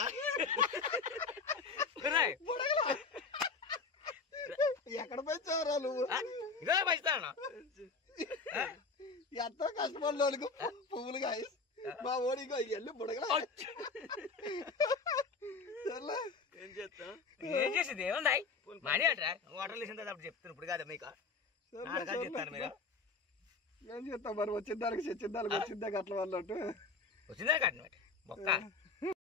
ఎక్కడ పెంచావురా నువ్వు ఇదే పెంచుతాను ఎంతో కష్టపడినోళ్ళకు పువ్వులు కాయ మా ఓడికో వెళ్ళి బుడగల ఏం చేస్తాం ఏం చేసింది ఏముంది మనీ అంటారా వాటర్ వేసిన తర్వాత అప్పుడు చెప్తాను ఇప్పుడు కాదు మీకు చెప్తాను మీరు ఏం చేస్తాం మరి వచ్చిన దానికి చచ్చిన దానికి వచ్చిందే అట్ల వాళ్ళట్టు వచ్చిందే కట్టినట్టు మొక్క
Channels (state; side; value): quieter; right; 4.5 dB